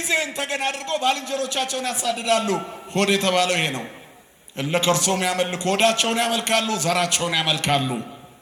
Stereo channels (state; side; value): identical; both; correlation 1.00